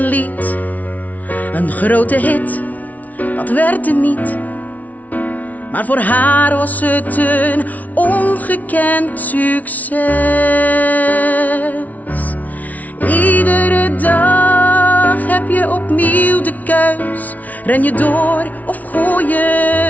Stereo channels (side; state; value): right; late; 0.073 ms